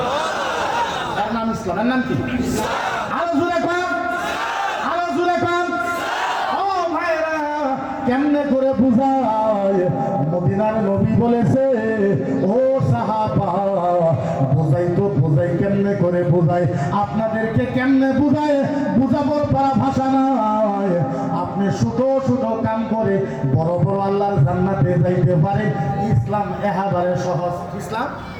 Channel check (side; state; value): both; identical; correlation 1.00